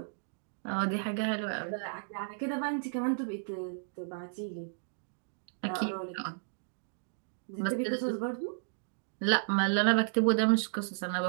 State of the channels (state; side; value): silent; left; digital silence